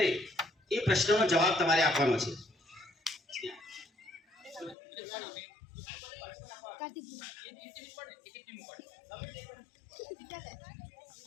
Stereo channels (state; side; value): drops out; right; at 4.8 s